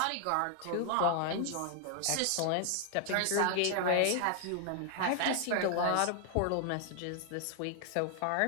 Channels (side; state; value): both; different; correlation 0.00